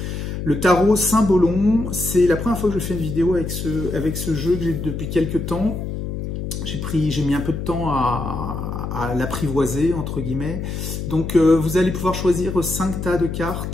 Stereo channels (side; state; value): left; noise; hum, 5 dB below the sound